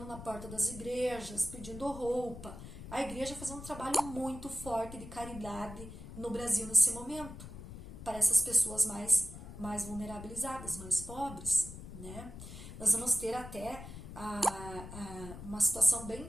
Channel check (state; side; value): noise; left; rumble, 12 dB below the sound